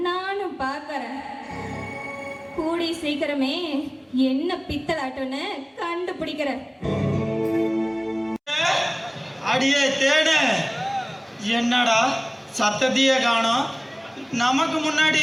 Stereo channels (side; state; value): both; identical; correlation 1.00